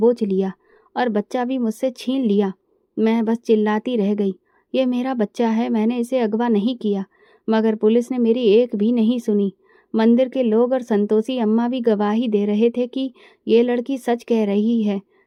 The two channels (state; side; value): identical; both; correlation 1.00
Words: लिया और बच्चा भी मुझसे छीन लिया। मैं बस चिल्लाती रह गई, ये मेरा बच्चा है, मैंने इसे अगवा नहीं किया। मगर पुलिस ने मेरी एक भी नहीं सुनी। मंदिर के लोग और संतोषी अम्मा भी गवाही दे रहे थे कि ये लड़की सच कह रही है,